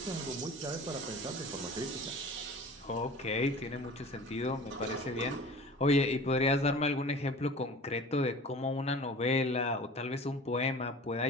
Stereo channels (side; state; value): both; normal; correlation 0.40